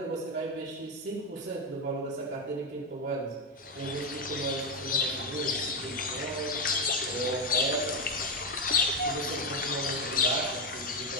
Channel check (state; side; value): normal; both; correlation 0.09